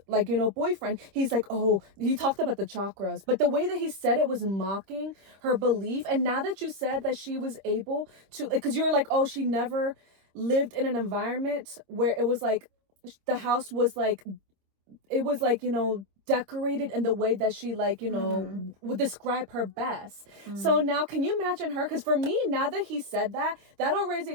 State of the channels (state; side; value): late; left; 26 ms